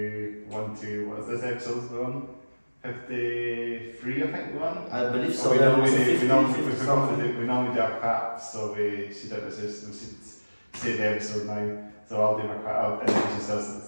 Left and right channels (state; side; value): inverted; both; correlation -1.00